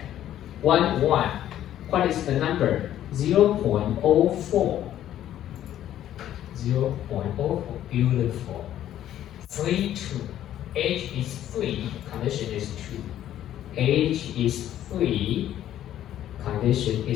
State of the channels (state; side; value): quieter; right; 11.8 dB